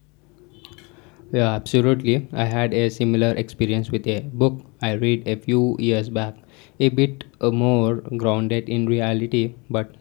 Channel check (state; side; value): quieter; right; 28.9 dB